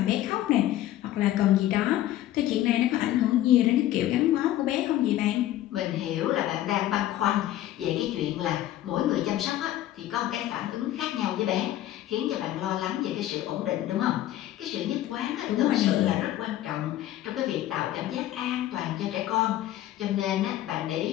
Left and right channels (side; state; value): right; quieter; 13.6 dB